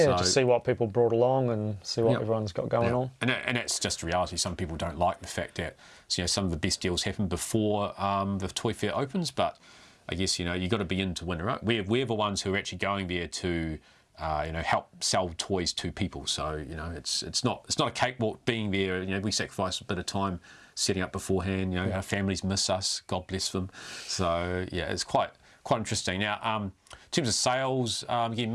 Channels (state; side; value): identical; both; correlation 1.00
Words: so, just see what people brought along and see what everyone's got going on. And that's just reality. Some people don't like the fact that some of the best deals happen before the toy fair opens, but I guess you've got to be in to win, right? We're the ones who are actually going there to help sell toys to people. So it's not a cakewalk being there. We sacrifice a bit of time setting up beforehand. Our families miss us. God bless them. So it's quite interesting. Now, in terms of sales, again,